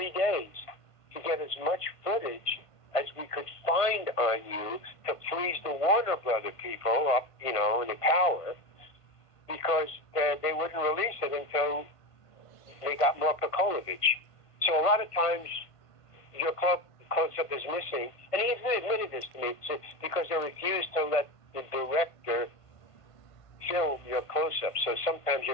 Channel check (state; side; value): late; right; 1.5 ms